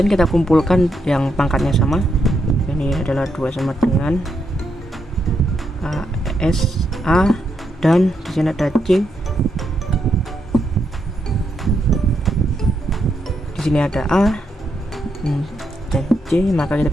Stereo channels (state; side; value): normal; both; correlation 0.80